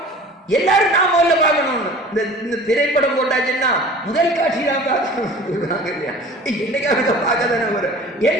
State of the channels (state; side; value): normal; both; correlation 0.43